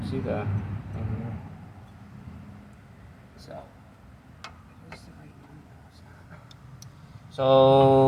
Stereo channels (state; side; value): identical; both; correlation 1.00